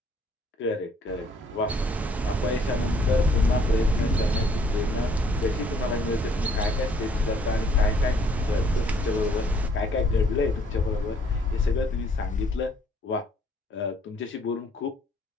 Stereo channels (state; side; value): normal; both; correlation 0.63